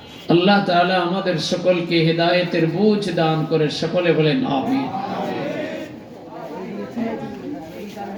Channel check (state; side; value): identical; both; correlation 1.00